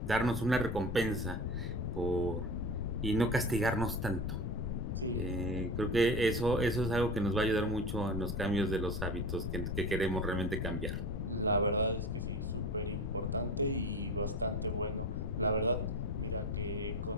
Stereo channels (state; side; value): noise; left; rumble, 3 dB below the sound